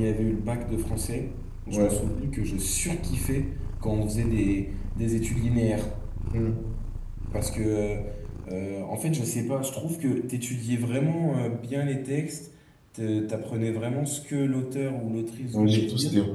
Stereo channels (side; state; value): both; identical; correlation 1.00